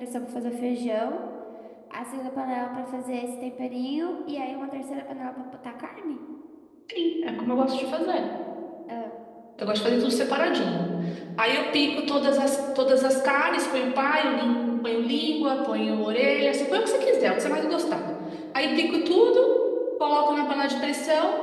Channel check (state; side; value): identical; both; correlation 1.00